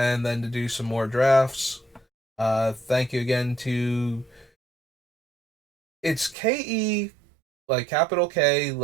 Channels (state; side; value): drops out; left; at 6.4 s